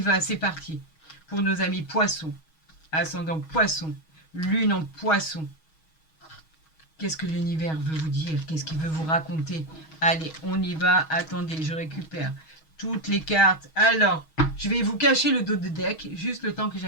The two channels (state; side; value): late; right; 6.3 ms